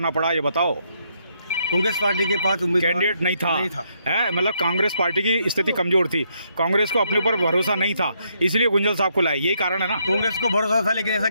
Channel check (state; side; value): inverted; both; correlation -0.75